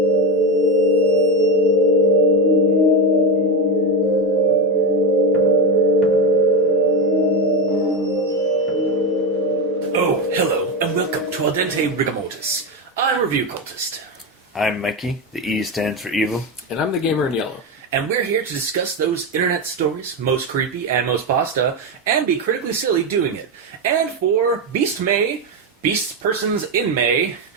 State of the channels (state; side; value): normal; both; correlation 0.12